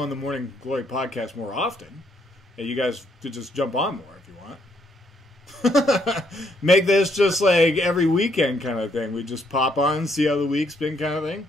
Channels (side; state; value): both; normal; correlation 0.71